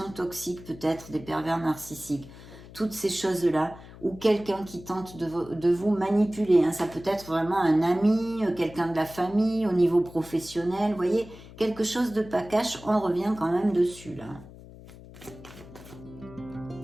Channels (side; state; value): left; noise; hum, 18 dB below the sound